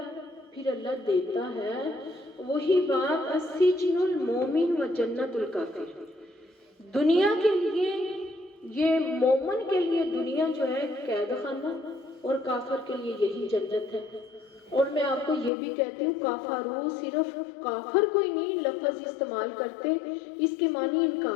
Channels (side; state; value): right; drops out; at 15.5 s